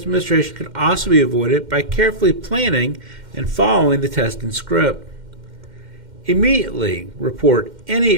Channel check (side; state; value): left; late; 2.1 ms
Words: administration can also be avoided by carefully planning and following the testing script. Immediately report any